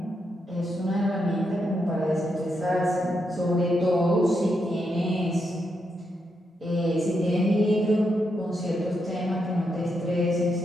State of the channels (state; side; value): normal; both; correlation 0.82